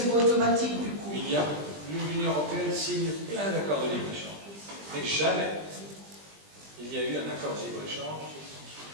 pas automatique du coup. L'Union européenne signe plein d'accords de libre-échange. Mais jamais il y a eu un accord de libre-échange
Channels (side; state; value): left; late; 20 ms